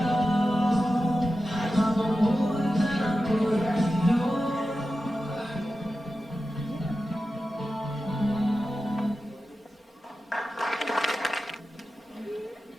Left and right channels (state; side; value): normal; both; correlation 0.93